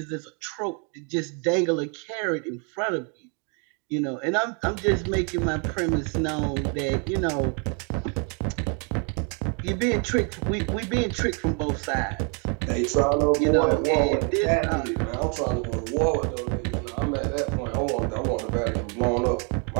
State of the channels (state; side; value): quieter; left; 37.6 dB